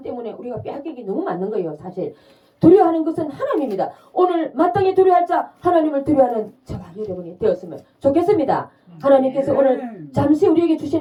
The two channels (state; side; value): identical; both; correlation 1.00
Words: 때문에 우리가 빼앗기기 너무 많은 거예요. 사실 두려워하는 것은 하나님입니다. 오늘 마땅히 두려워할 자 하나님을 두려워하는 저와 여러분이 되었으면 좋겠습니다. 하나님께서 오늘 잠시 우리에게